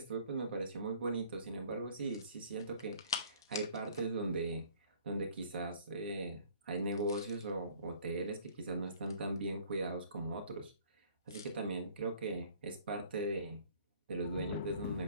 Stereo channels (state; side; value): inverted; both; correlation -0.55